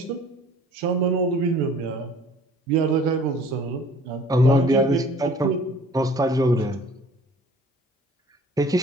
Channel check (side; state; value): both; normal; correlation 0.51